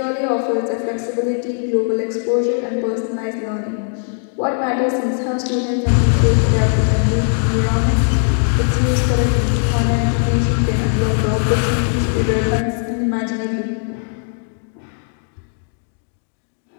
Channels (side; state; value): right; silent; 58 dB below the other